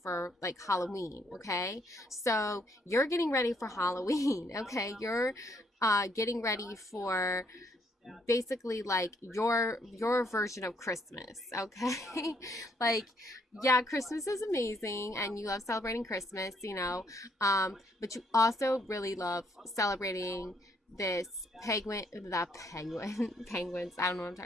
for like Halloween, okay? So you're getting ready for Halloween, okay? You're getting ready for basically like your version of Christmas, okay? Like, yeah, Christmas is amazing and you love celebrating Christmas, but you also really love celebrating this penguins, I don't know what I'm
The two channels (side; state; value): both; normal; correlation 0.70